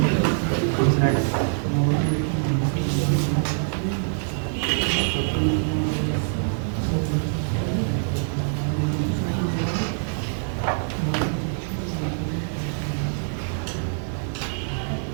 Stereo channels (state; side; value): silent; left; digital silence